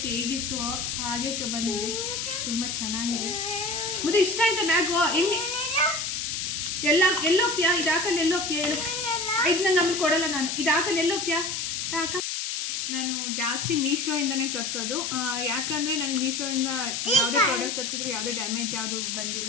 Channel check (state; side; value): noise; left; hiss, 2 dB below the sound